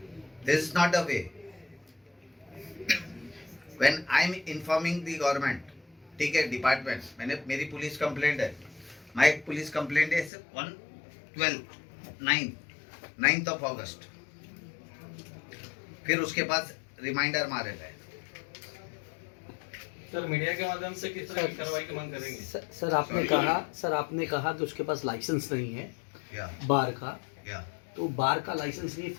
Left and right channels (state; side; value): drops out; right; at 10.3 s